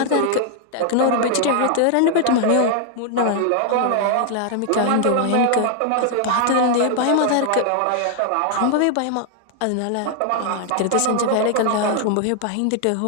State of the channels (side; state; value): both; different; correlation 0.00